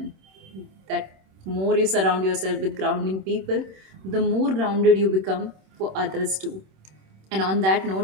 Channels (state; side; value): late; left; 26 ms